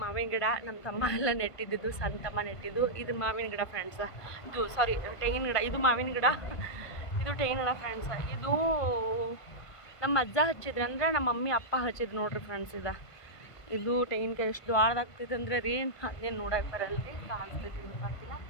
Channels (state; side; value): late; right; 1.5 ms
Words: ಮಾವಿನ ಗಿಡ ನಮ್ಮ ತಮ್ಮ ಎಲ್ಲ ನೆಟ್ಟಿದ್ದು, ಸಣ್ಣ ತಮ್ಮ ನೆಟ್ಟಿದ್ದು. ಇದು ಮಾವಿನ ಗಿಡ ಫ್ರೆಂಡ್ಸ್. ಇದು ಸಾರಿ ತೆಂಗಿನ ಗಿಡ. ಇದು ಮಾವಿನ ಗಿಡ, ಇದು ತೆಂಗಿನ ಗಿಡ ಫ್ರೆಂಡ್ಸ್. ಇದು ನಮ್ಮ ಅಜ್ಜ ಹಚ್ಚಿದ್ರು, ಅಂದರೆ ನಮ್ಮ ಮಮ್ಮಿ ಅಪ್ಪ ಹಚ್ಚಿದ್ರು ನೋಡ್ರಿ ಫ್ರೆಂಡ್ಸ್. ಇದು ತೆಂಗಿನಕಾಯಿ ಎಷ್ಟು ದೊಡ್ಡದಾಗ್ತೈತೆ ಅಂದರೆ ರೀ, ಅದೇನು ನೋಡಕ್ಕೆ ಬರಲ್ರಿ, ಕಾಣಿಸ್ತೈತಿ ಗೊತ್ತಾಗ್ತಿಲ್ಲ.